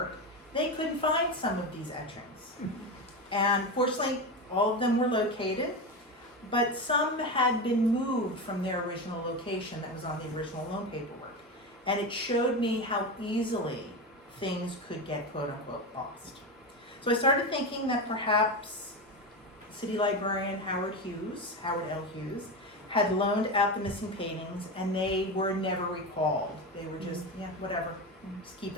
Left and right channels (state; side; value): normal; both; correlation 0.19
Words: they couldn't find some of these etchings. And fortunately, all of them were located, but some had been moved from their original location that was on the original loan paperwork. And it showed me how easily things could get quote unquote lost. So I started thinking that perhaps city librarian Howard L. Hughes, had loaned out the missing paintings and they were never recalled. They were just, yeah, whatever, just keep